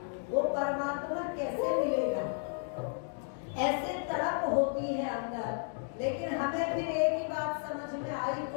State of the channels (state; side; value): silent; right; 55 dB below the other